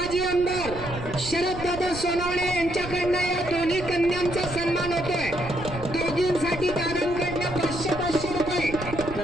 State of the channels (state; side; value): noise; right; rumble, 11 dB below the sound